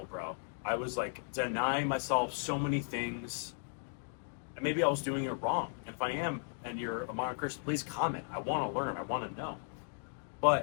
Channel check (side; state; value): right; silent; digital silence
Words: bro. I was like denying myself so many things, and maybe I was doing it wrong. And if I am, and you're a modern Christian, please comment. I want to learn. I want to know.